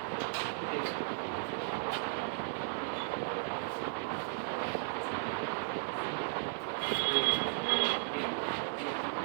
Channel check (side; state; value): left; silent; 54 dB below the other